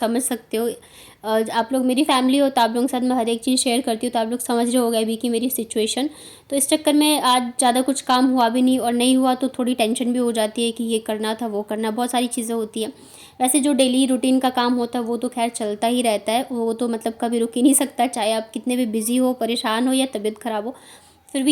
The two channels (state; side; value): identical; both; correlation 1.00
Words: सकते हो, आप लोग मेरी फैमिली हो तो आप लोगों के साथ मैं हर एक चीज़ शेयर करती हूँ, तो आप लोग समझ रहे होगे अभी कि मेरी सिचुएशन। तो इस चक्कर में आज ज़्यादा कुछ काम हुआ भी नहीं, और नहीं हुआ तो थोड़ी टेंशन भी हो जाती है कि ये करना था वो करना, बहुत सारी चीज़ें होती हैं। वैसे जो डेली रूटीन का काम होता है वो तो खैर चलता ही रहता है, वो तो मतलब कभी रुक ही नहीं सकता, चाहे आप कितने भी बिज़ी हो, परेशान हो या तबीयत ख़राब हो, फिर